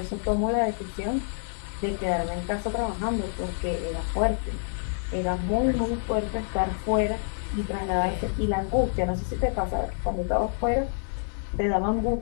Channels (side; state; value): right; silent; digital silence